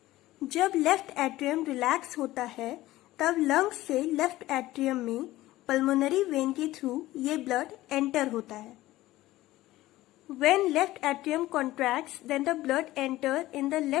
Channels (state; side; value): quieter; right; 16.7 dB